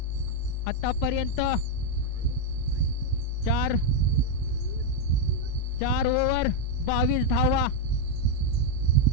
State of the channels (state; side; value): different; both; correlation 0.01